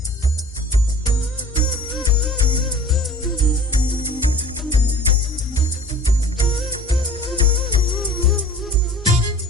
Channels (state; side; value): normal; both; correlation 0.46